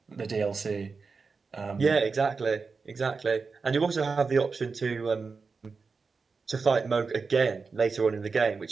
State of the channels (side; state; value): left; quieter; 4.7 dB